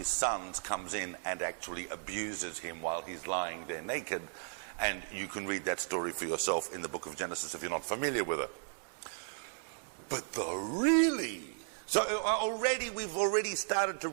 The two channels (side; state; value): left; silent; digital silence